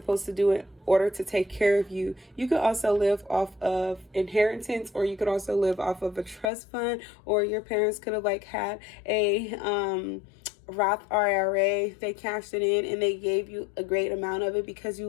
to do in order to take care of you. You could also live off of inheritance, or you could also live off of a trust fund, or your parents could have like had a Roth IRA. They cashed it in and they gave you a great amount of it because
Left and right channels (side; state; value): right; drops out; at 6.5 s